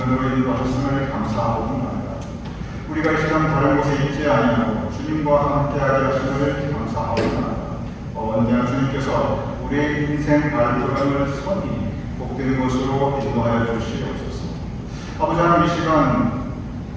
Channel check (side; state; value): both; identical; correlation 1.00